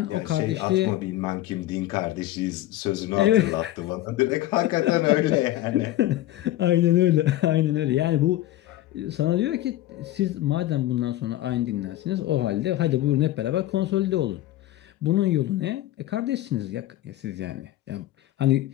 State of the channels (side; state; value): right; quieter; 14.8 dB